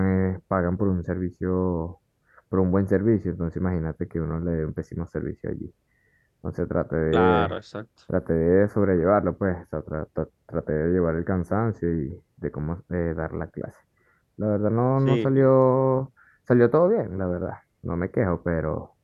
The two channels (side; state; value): both; identical; correlation 1.00